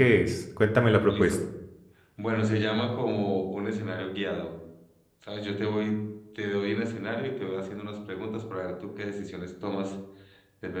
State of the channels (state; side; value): identical; both; correlation 1.00